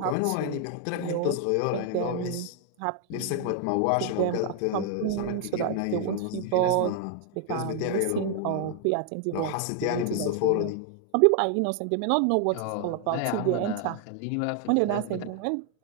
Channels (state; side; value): different; both; correlation 0.00